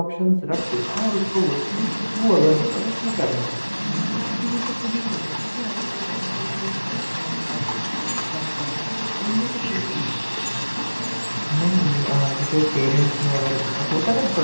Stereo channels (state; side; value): inverted; both; correlation -1.00